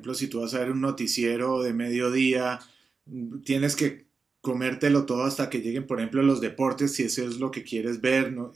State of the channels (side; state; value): left; quieter; 4.7 dB